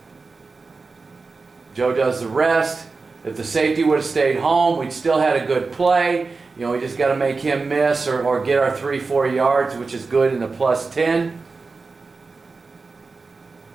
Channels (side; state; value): left; quieter; 4.2 dB